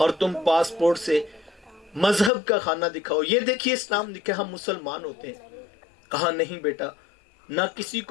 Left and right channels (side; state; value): right; drops out; at 2.3 s